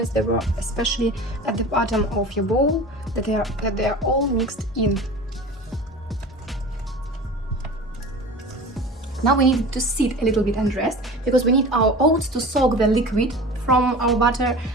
that were especially at the bottom of your bowl, that they are all mixed in. Now we need to sit a little bit and rest, because we need our oats to soak the liquid from our butter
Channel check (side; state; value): both; normal; correlation 0.36